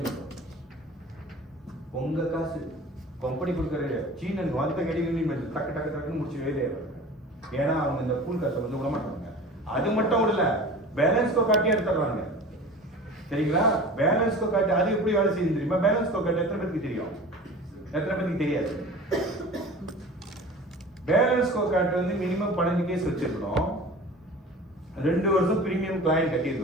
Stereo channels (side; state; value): both; normal; correlation 0.39